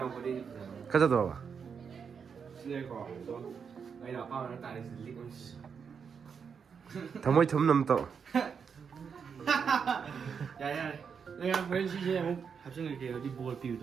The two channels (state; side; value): quieter; left; 6.5 dB